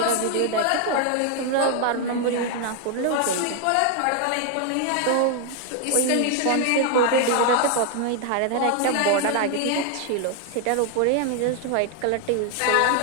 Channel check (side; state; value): both; different; correlation 0.00